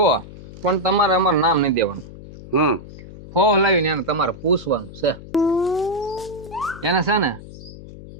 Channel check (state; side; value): noise; left; hum, 16 dB below the sound